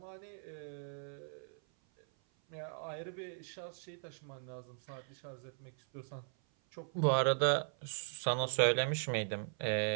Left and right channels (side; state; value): left; silent; 52 dB below the other